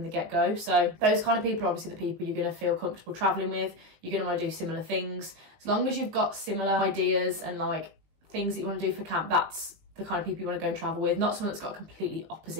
the get-go. So those kind of people are obviously the people you're going to feel comfortable traveling with. You're going to want to do similar things. As long as you've got similar ideas and like things that you want to do for camp, that's the kind of people you want to go and travel with, not someone that's got a completely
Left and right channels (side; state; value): left; late; 19 ms